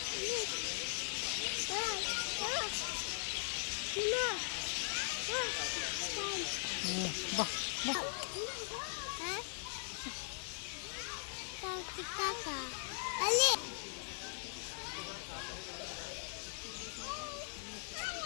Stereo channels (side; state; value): right; silent; digital silence